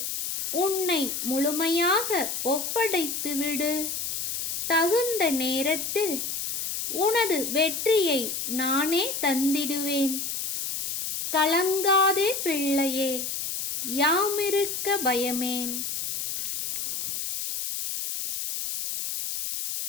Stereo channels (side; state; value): left; noise; hiss, 3 dB below the sound